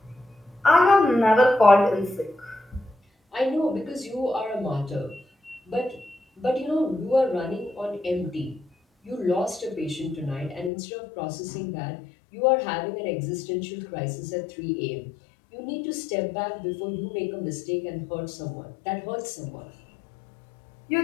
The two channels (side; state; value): right; drops out; at 10.7 s